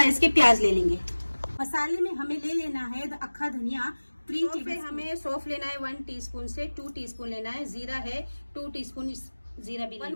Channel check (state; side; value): inverted; both; correlation -1.00